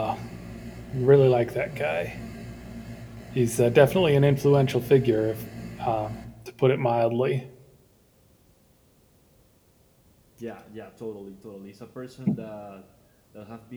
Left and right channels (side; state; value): both; identical; correlation 1.00